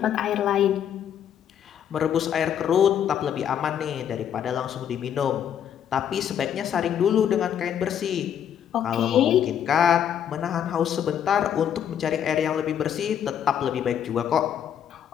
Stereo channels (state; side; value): quieter; right; 9.2 dB